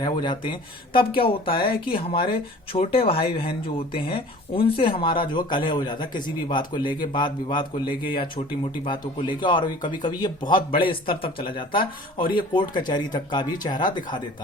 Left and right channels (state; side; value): normal; both; correlation 0.45